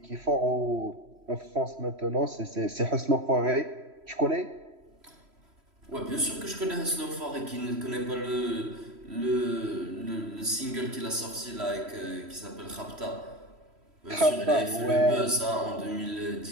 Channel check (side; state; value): left; late; 3.1 ms